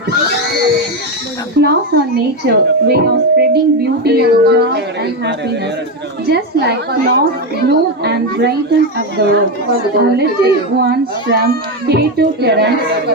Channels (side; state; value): both; normal; correlation 0.10